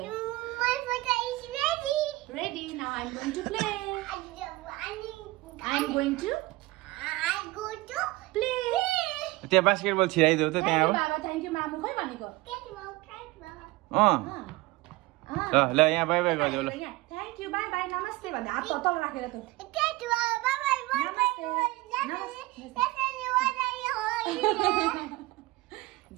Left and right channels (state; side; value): quieter; left; 20.8 dB